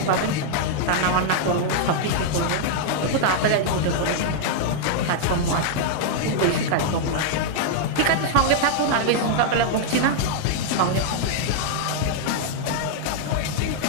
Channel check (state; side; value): different; both; correlation -0.01